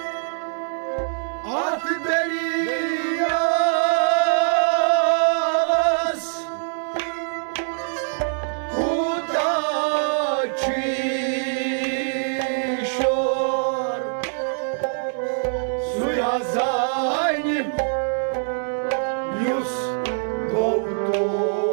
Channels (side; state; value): left; silent; digital silence